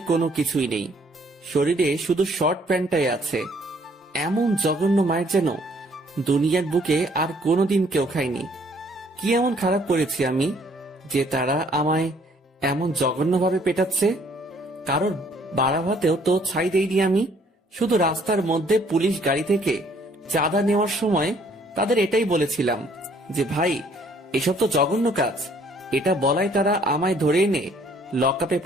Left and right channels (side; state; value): both; normal; correlation 0.62